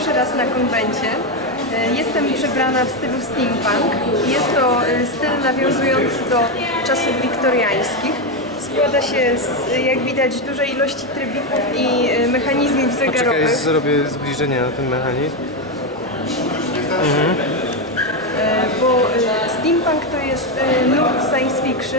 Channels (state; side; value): normal; both; correlation 0.08